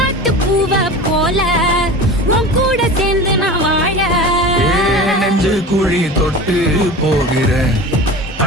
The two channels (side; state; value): both; normal; correlation 0.33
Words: பூவ போல உன் கூட சேர்ந்து நான் வாழ. நெஞ்சு குழி தொட்டு போகிற